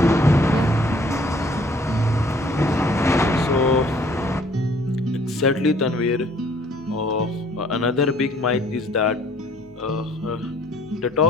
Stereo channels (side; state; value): both; normal; correlation 0.58